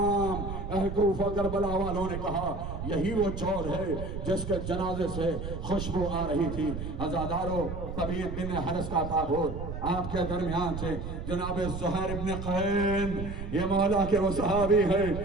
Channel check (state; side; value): noise; right; rumble, 6 dB below the sound